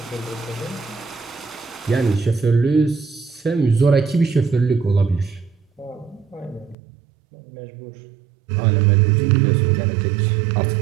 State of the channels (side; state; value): left; drops out; at 6.8 s